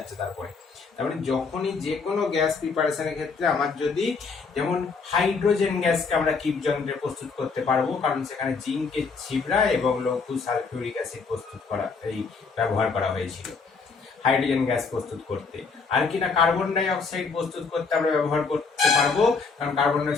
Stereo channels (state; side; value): quieter; right; 4.8 dB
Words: তারপরে তার মানে যখনই যে কোনো গ্যাস প্রিপারেশনের ক্ষেত্রে আমার যদি, যেমন হাইড্রোজেন গ্যাসকে আমরা কিপ যন্ত্রে প্রস্তুত করতে পারবো, কারণ সেখানে জিঙ্কের ছিবড়া এবং লঘু সালফিউরিক অ্যাসিড প্রস্তুত করা, এই ব্যবহার করা হয়েছিল হাইড্রোজেন গ্যাস প্রস্তুত করতে। আর কি না, কার্বন ডাই অক্সাইড প্রস্তুত করতে আমরা ব্যবহার করতে পারবো, কারণ carbon die